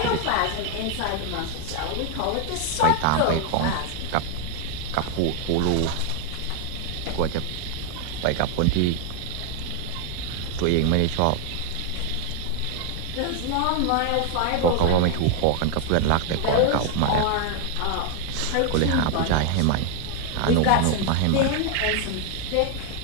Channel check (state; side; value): different; both; correlation 0.00